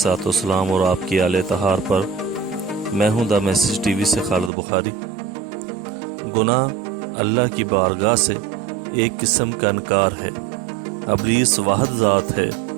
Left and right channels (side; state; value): left; drops out; at 4.5 s